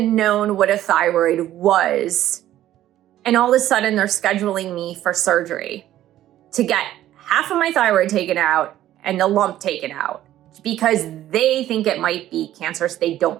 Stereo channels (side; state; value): left; quieter; 13.1 dB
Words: known what a thyroid was. And all of a sudden, they're scheduling me for surgery to get half of my thyroid taken out and the lump taken out because they think it might be cancerous. They